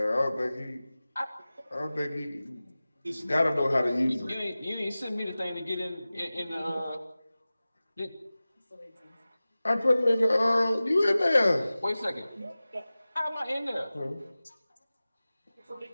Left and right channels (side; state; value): both; inverted; correlation -0.97